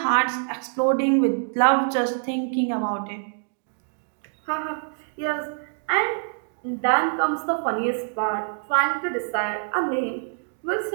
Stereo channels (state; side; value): silent; left; digital silence